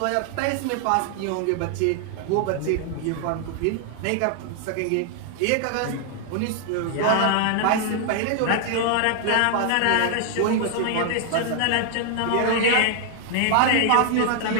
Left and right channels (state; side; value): different; both; correlation 0.00